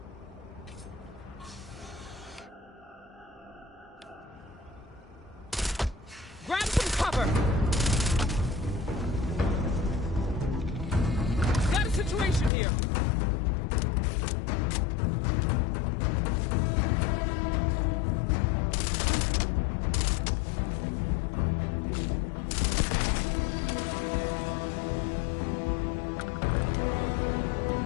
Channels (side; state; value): right; drops out; at 12.5 s